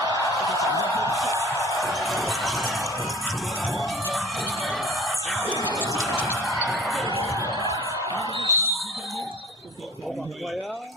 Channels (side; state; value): both; normal; correlation 0.45